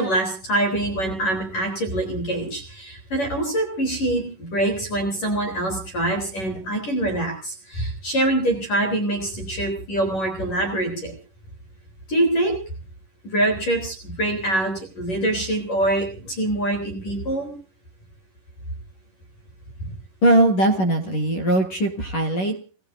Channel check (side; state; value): right; late; 11 ms